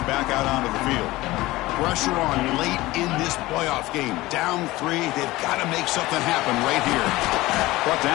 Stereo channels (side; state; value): right; quieter; 18.8 dB